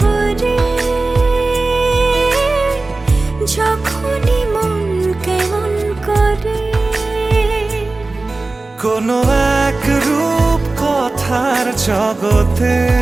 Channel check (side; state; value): left; quieter; 3.3 dB